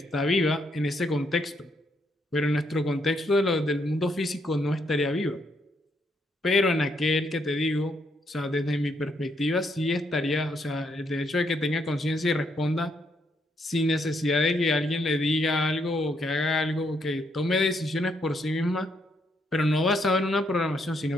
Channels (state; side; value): normal; both; correlation 0.75